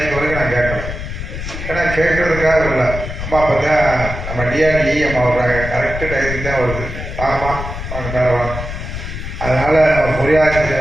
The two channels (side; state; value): left; noise; rumble, 7 dB below the sound